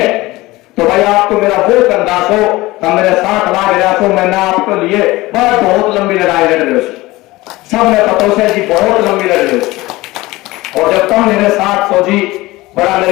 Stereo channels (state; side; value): quieter; right; 19.7 dB